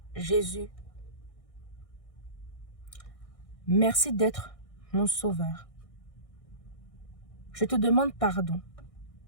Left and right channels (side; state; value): right; late; 1.6 ms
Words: Jésus, merci d'être mon sauveur. Je te demande pardon